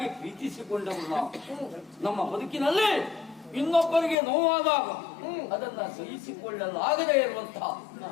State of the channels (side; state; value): right; drops out; at 4.2 s